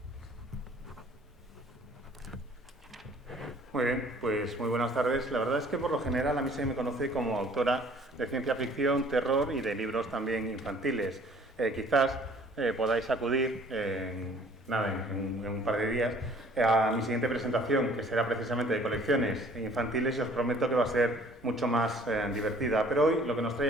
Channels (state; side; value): normal; both; correlation 0.55